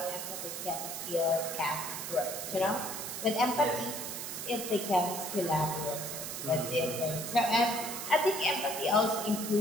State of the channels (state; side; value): noise; right; hiss, 6 dB below the sound